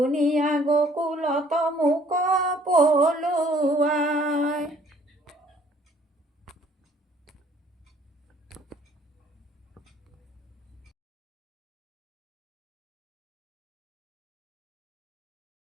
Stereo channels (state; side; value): normal; both; correlation 0.59